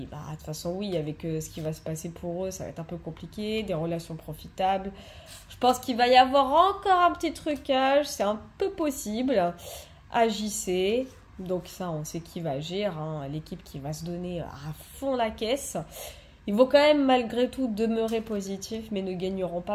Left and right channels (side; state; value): both; identical; correlation 1.00